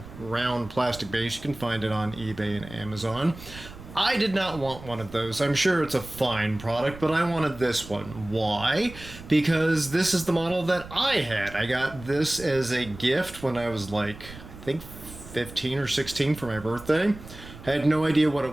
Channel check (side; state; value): right; noise; rumble, 16 dB below the sound